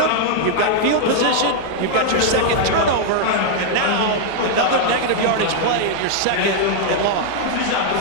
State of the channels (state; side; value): different; both; correlation -0.01